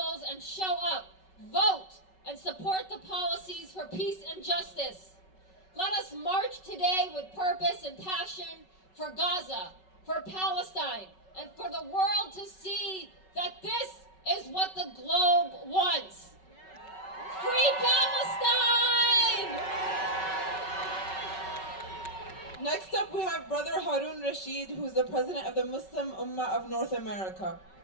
and show up, vote, and support the policies for peace and justice. Let us march today with purpose and passion for Gaza, for Palestine, and for the world to see that this is what the globe wants. Free Palestine! Next up, we have Brother Harun Rashid, who's the president of the Muslim Ummah of North America.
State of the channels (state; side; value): late; right; 5.3 ms